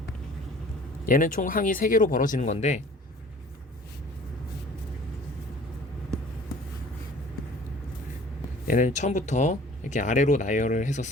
얘는 총 항이 3개로 벌어지는 건데 얘는 처음부터 이렇게 아래로 나열을 해서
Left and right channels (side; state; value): both; normal; correlation 0.49